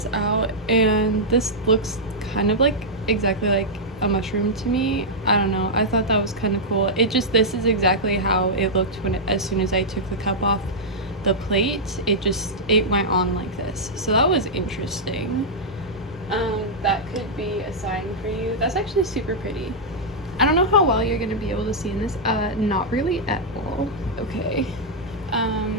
out, and this looks kind of like exactly like a mushroom to me. I don't know, I thought that was kind of cool. This is exactly how it looked as soon as I took the cup off the plate. It went on like this, so that was interesting. That could be a sign for you. That's actually super pretty. I don't know how well you're gonna be able to see in this. Not really at all. Okay.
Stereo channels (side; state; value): both; normal; correlation -0.08